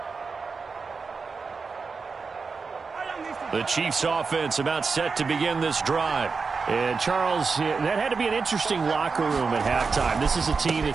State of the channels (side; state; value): left; quieter; 4.8 dB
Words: The Chiefs offense about set to begin this drive. And, Charles, that had to be an interesting locker room at halftime. This is a team